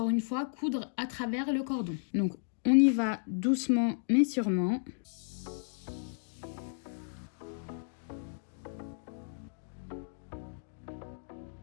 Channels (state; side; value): silent; right; digital silence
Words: une fois, coudre à travers le cordon. Donc on y va doucement mais sûrement.